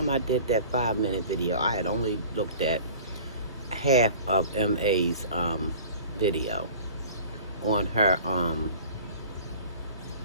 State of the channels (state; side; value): inverted; both; correlation -0.44